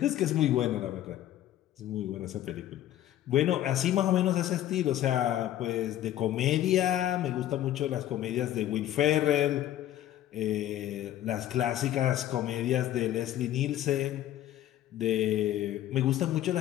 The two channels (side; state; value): right; quieter; 12.8 dB